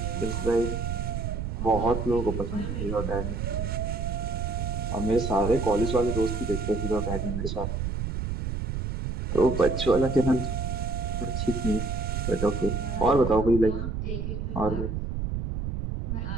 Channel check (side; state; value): right; noise; rumble, 2 dB below the sound